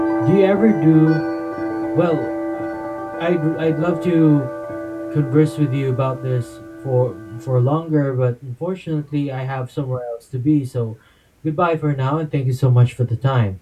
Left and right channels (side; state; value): both; identical; correlation 1.00